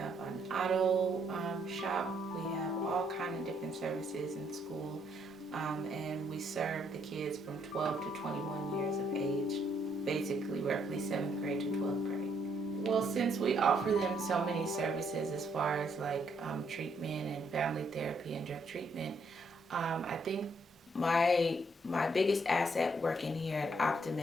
an auto shop, we have all kinds of different services in school, and we serve the kids from 12 to 21 years of age, basically roughly 7th grade to 12th grade. Well, since we offer them so many services as far as like treatment and family therapy and drug treatment, I think my biggest asset working here at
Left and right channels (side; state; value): both; normal; correlation 0.71